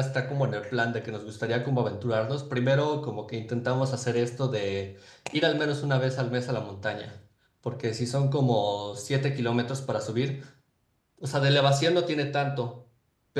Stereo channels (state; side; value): identical; both; correlation 1.00